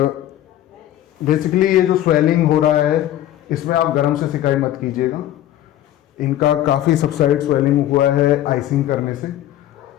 बेसिकली ये जो स्वेलिंग हो रहा है इसमें आप गर्म से सिकाई मत कीजिएगा. इनका काफ़ी सबसाइड स्वेलिंग हुआ है आइसिंग करने से.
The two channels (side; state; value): right; quieter; 12.9 dB